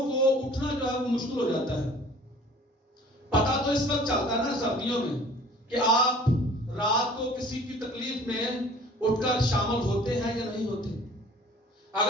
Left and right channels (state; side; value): normal; both; correlation 0.49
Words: کو اٹھنا جو ہے وہ مشکل ہو جاتا ہے. پتا تو اس وقت چلتا ہے نا سردیوں میں کہ آپ رات کو کسی کی تکلیف میں اٹھ کر شامل ہوتے ہیں یا نہیں ہوتے.